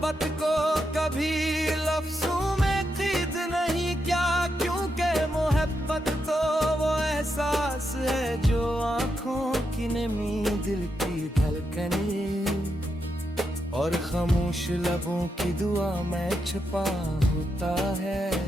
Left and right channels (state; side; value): normal; both; correlation 0.84